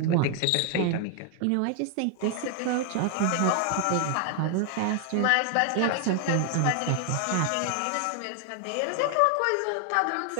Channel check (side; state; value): both; different; correlation 0.00